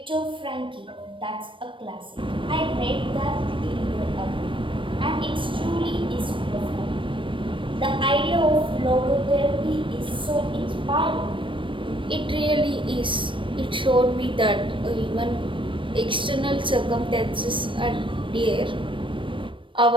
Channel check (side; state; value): left; late; 0.25 ms